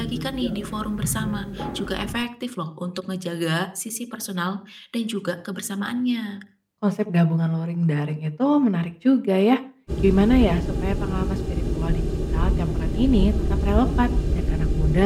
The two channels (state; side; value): identical; both; correlation 1.00